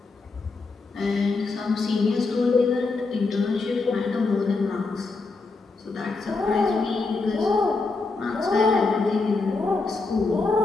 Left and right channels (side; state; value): right; quieter; 3.9 dB